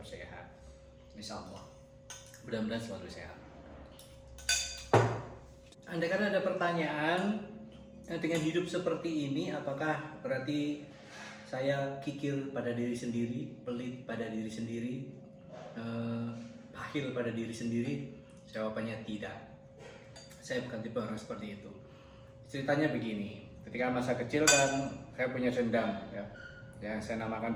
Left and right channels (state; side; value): identical; both; correlation 1.00